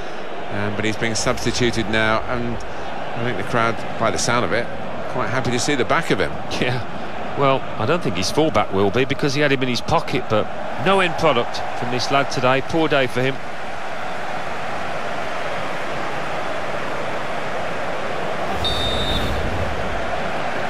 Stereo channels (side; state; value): both; identical; correlation 1.00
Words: but he's being substituted now, and I think the crowd, by the sound of it, quite happy to see the back of him. Yeah, well, I don't think his fullback will be, because he had him in his pocket, but no end product from this lad today. Poor day for him.